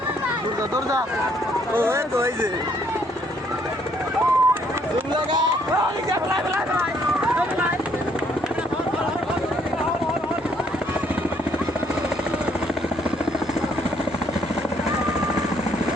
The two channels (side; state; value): both; normal; correlation 0.67